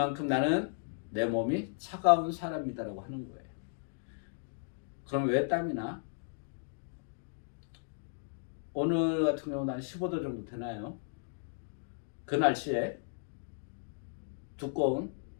나는 내 몸이 차가운 사람이다라고 하는 거예요. 그럼 왜 땀이 나? 오늘 같은 경우는 한 15도 정도 되나요? 그 날씨에 두꺼운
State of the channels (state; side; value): silent; right; digital silence